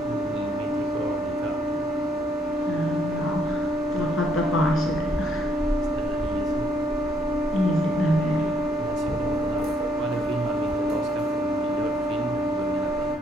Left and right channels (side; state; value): both; normal; correlation 0.70